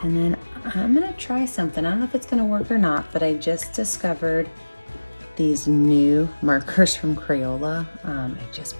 And then I'm gonna try something. I don't know if it's gonna work or not, but I just discovered these new markers from Crayola. I just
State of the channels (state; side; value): inverted; both; correlation -1.00